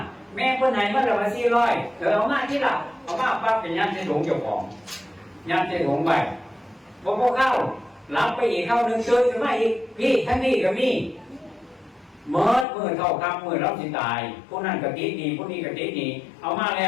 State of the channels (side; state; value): right; drops out; at 12.7 s